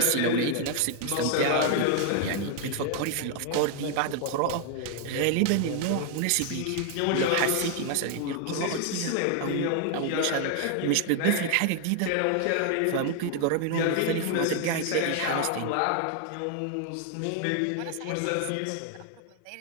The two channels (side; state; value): both; different; correlation 0.00